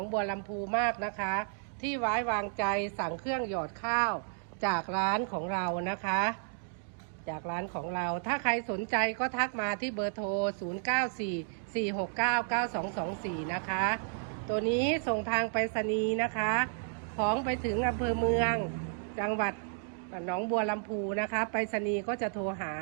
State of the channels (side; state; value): left; silent; digital silence